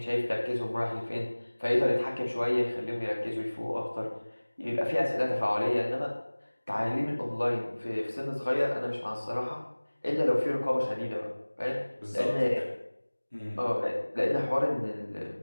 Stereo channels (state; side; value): inverted; both; correlation -1.00